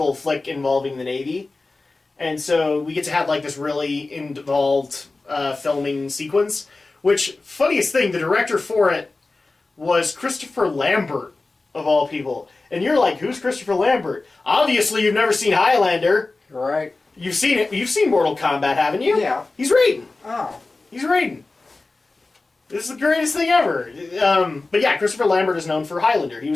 flick involving the Navy. And so we get to have like this really involved filming sequence. Which, funniest thing, the director for it was Christopher Lambert, of all people. And you're like, who's Christopher Lambert? Obviously you've never seen Highlander. Right. You've seen it. You've seen Mortal Kombat, haven't you? Yeah. He's Raiden. Oh. He's Raiden. This is the greatest thing ever. But yeah, Christopher Lambert is known for Highlander. He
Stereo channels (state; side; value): quieter; right; 3.4 dB